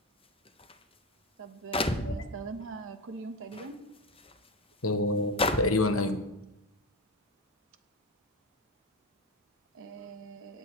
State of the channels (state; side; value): normal; both; correlation 0.17